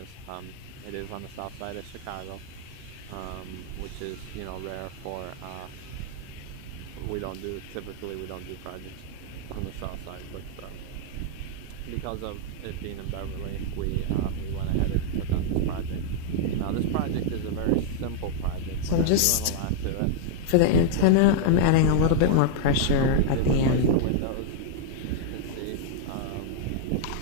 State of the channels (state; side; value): different; both; correlation -0.01